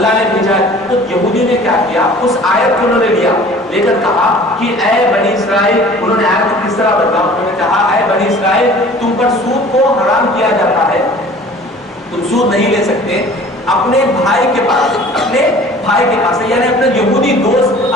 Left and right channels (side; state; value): both; normal; correlation 0.47